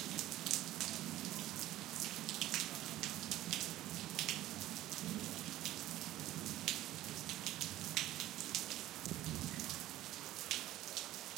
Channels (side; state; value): left; quieter; 14.9 dB